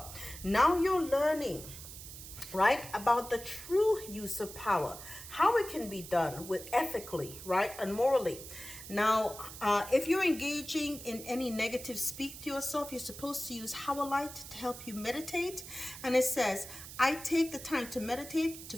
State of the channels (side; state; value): right; noise; hiss, 13 dB below the sound